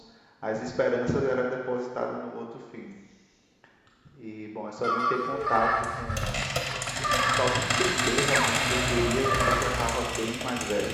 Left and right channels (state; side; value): identical; both; correlation 1.00